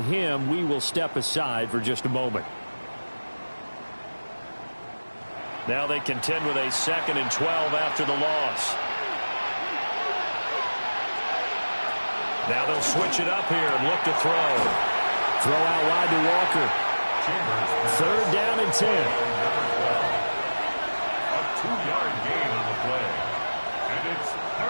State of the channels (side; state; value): both; inverted; correlation -1.00